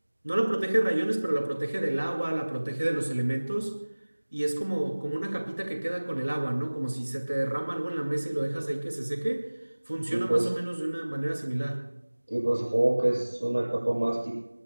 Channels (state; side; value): inverted; both; correlation -1.00